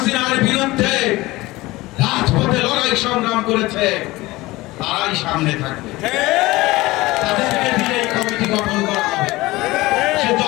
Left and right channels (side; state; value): right; quieter; 19.9 dB